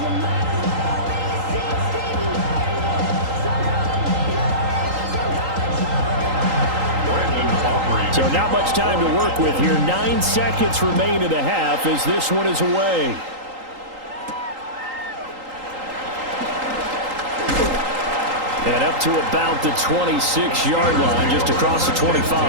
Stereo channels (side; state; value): left; late; 3.8 ms